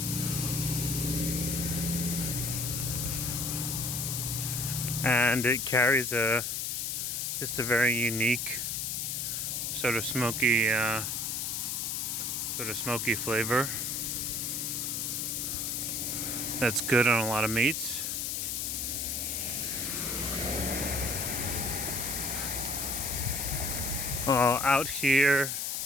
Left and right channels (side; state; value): left; noise; hiss, 1 dB below the sound